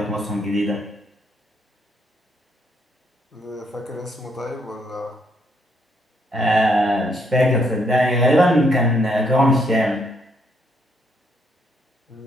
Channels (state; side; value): normal; both; correlation 0.72